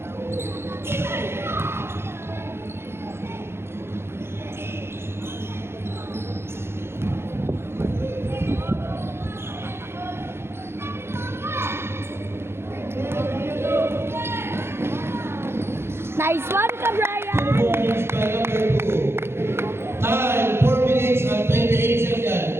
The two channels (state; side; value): late; left; 0.12 ms